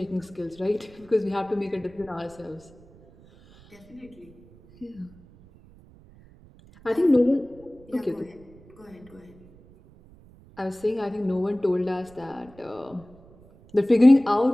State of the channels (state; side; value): noise; right; rumble, 25 dB below the sound